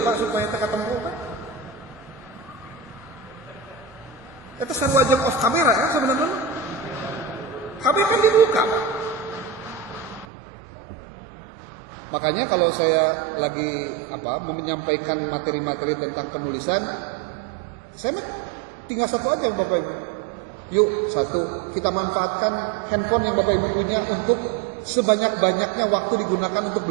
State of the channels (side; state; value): left; drops out; at 10.2 s